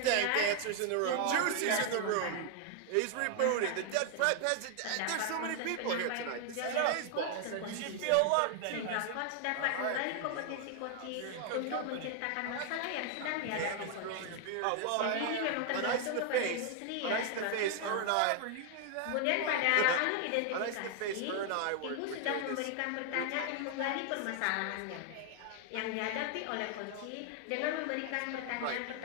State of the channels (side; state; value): both; different; correlation 0.00